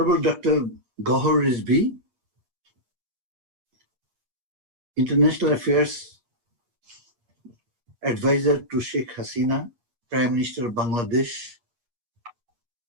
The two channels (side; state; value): left; late; 8.4 ms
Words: Dr. Gohar Rizvi, International Affairs Advisor to Sheikh Hasina, Prime Minister of Bangladesh,